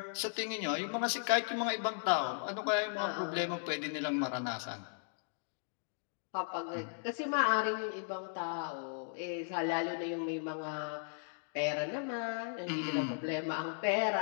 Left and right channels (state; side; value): silent; right; digital silence